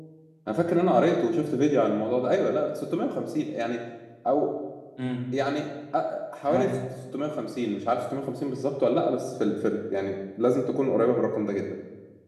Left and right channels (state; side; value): identical; both; correlation 1.00